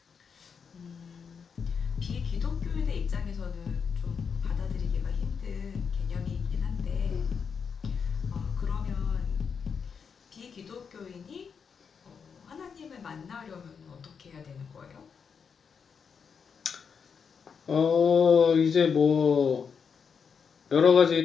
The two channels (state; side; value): quieter; right; 6.3 dB